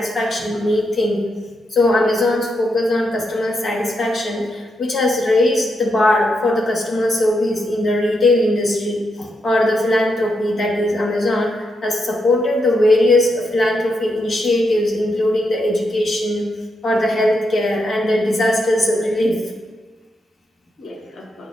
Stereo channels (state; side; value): normal; both; correlation 0.82